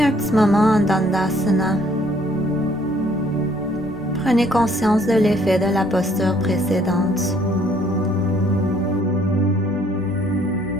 petit moment en Dandasana. Prenez conscience de l'effet de la posture précédente.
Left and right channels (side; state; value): both; normal; correlation 0.63